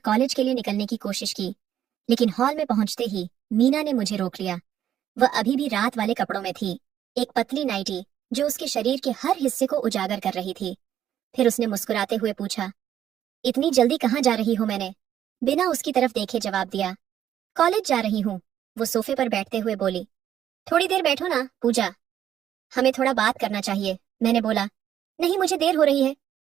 कॉलेज के लिए निकलने की कोशिश की, लेकिन हॉल में पहुंचते ही मीना ने मुझे रोक लिया। वह अभी भी रात वाले कपड़ों में थी, एक पतली नाइटी जो उसके शरीर के हर हिस्से को उजागर कर रही थी। फिर उसने मुस्कुराते हुए पूछा, इतनी जल्दी कहाँ जा रही हो? मैंने बिना उसकी तरफ देखे जवाब दिया, कॉलेज जा रही हूँ। वो सोफे पर बैठते हुए बोली, थोड़ी देर बैठो ना पूजा, हमें थोड़ा बात करना चाहिए। मैंने बोला, नहीं, मुझे देर हो रही है,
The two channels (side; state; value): left; quieter; 10.7 dB